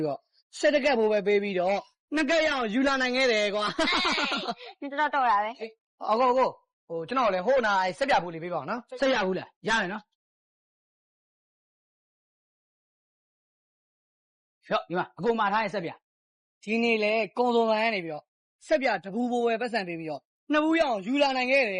ပြီးတော့ဆက်တကက်ဖို့ပဲပေးပြီးတော့နှစ်ကက်ရအောင်ယူလာနိုင်ခဲ့တယ်ကွာ你知道多少呗？အကိုဟိုကျွန်တော်လည်းဟိုနာဆက်ပြဘူးလေးပေးပါအောင်နော်ဆက်ရဘူးလားရတယ်နော်ဖြော့ဒီမှာအကိုမှာထားရဲ့ဆက်ပြဒီနေ့လေကုန်းသုံးဆိုင်ကနေပြီးတော့ဆက်ပြတပူဘိုးပဲပတ်စံပေးပြီးတော့နှစ်ဘူးရအောင်ယူလာနိုင်ခဲ့တ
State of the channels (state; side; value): identical; both; correlation 1.00